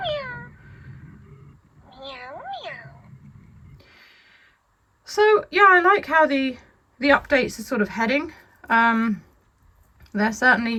So, yeah, I like how the updates are sort of heading. They're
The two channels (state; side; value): identical; both; correlation 1.00